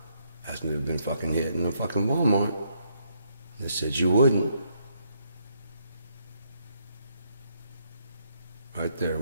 Asked me to have been fucking hit in a fucking Walmart. They said you wouldn't. Right there,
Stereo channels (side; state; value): both; inverted; correlation -0.73